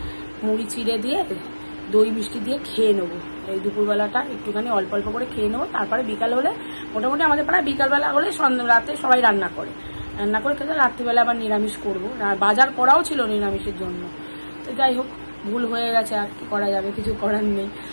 মুড়ি চিড়ে দিয়ে দই মিষ্টি দিয়ে খেয়ে নেবো। এই দুপুরবেলাটা একটুখানি অল্প অল্প করে খেয়ে নেবো, তারপরে বিকাল হলে মোটামুটি আমাদের পাড়ায় বিকালবেলা হলে রাতে সবাই রান্না করে খেতে, রাত্রিবেলা আবার নিরামিষ করবো। বাজার করাও ছিল নিরামিষের জন্য, তো যাই হোক, ভুল হয়ে গেছে, আর কি করা যাবে, কিছু করার নেই।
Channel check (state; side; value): inverted; both; correlation -1.00